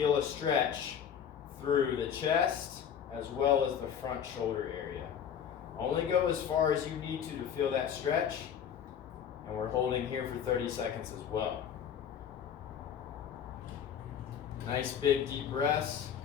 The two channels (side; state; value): right; quieter; 8.4 dB